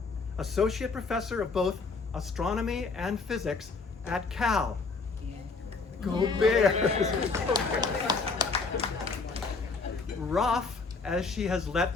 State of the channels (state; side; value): quieter; right; 4.3 dB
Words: associate professor of both astronomy and physics at Cal. Go Bears! Raf, as she has let